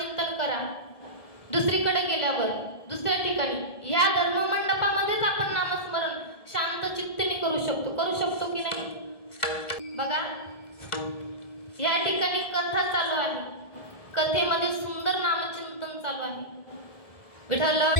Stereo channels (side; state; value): right; late; 1.7 ms